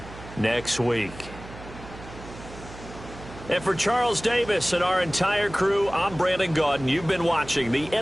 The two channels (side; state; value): right; noise; hum, 15 dB below the sound